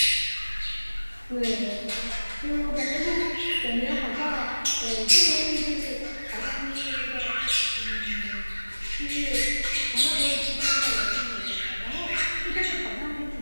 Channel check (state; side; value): inverted; both; correlation -1.00